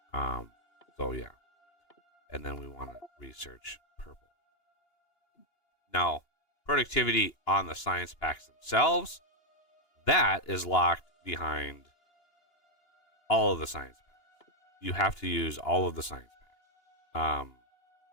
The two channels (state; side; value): late; right; 2.9 ms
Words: modules. So yeah, and then we want to research purple. Now, productivity on the science packs themselves, that is locked behind all of the science packs. You have to use all of the science packs.